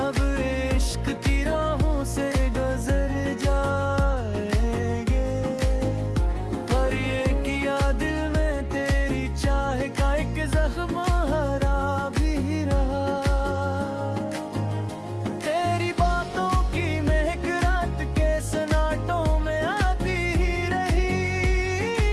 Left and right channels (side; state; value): both; identical; correlation 1.00